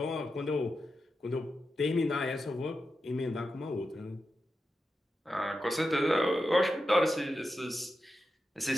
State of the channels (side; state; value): both; normal; correlation 0.90